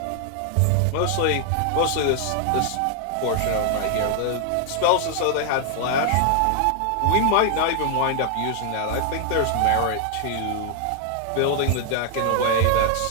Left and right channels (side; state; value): both; different; correlation 0.00